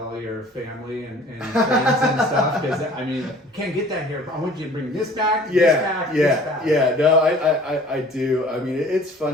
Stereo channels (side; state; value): both; normal; correlation 0.50